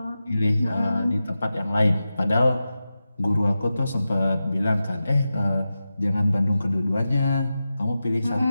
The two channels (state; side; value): inverted; both; correlation -0.92